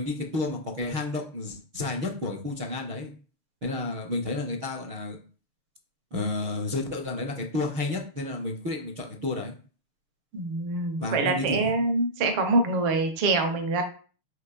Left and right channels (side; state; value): left; late; 6.6 ms